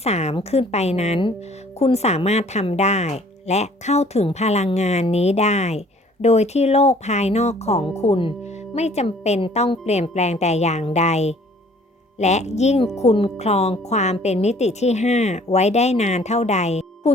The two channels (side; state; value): both; normal; correlation 0.56